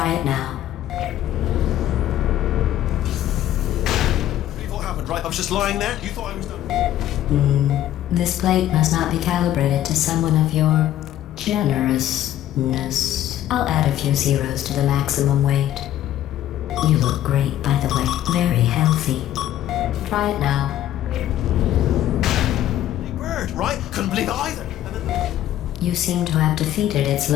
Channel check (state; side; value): quieter; right; 12.5 dB